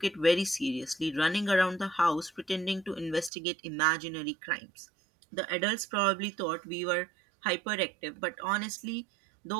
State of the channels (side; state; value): left; drops out; at 3.3 s